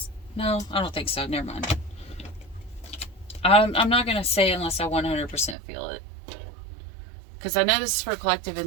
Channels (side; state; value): left; drops out; at 5.6 s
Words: no, I don't think so. Never mind. I'm not going to say unless I 100% feel it. Because I know this is for a collective